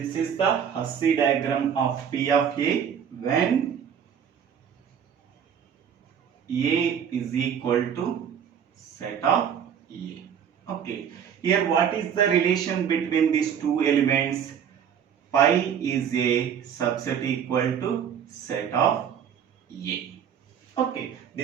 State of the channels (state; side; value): quieter; left; 8.2 dB